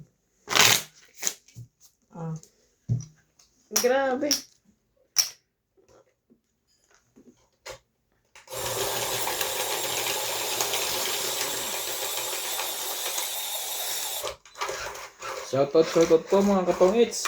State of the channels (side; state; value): both; identical; correlation 1.00